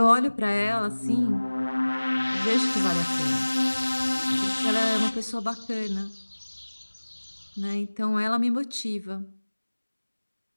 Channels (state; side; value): inverted; both; correlation -1.00